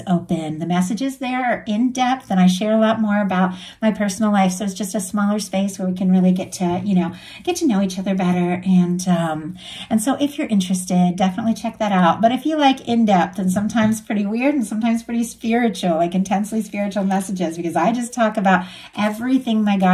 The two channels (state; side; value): identical; both; correlation 1.00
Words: open. The messages there are in depth, and I share a lot more about my personal life. So it's just a smaller space where we can really get to know each other better. And so if you're interested, definitely check that out. But if you like in-depth and sometimes pretty weird and sometimes pretty spiritual, like intensely spiritual messages, because I just talk about everything my